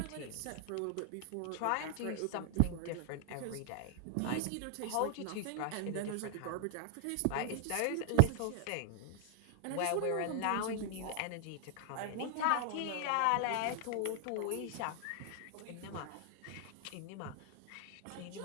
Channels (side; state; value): both; different; correlation 0.00